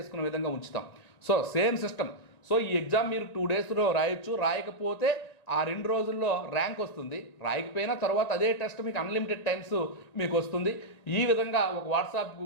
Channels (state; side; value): late; right; 1.9 ms